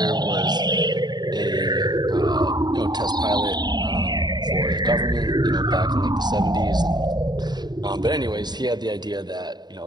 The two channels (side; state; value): left; late; 0.20 ms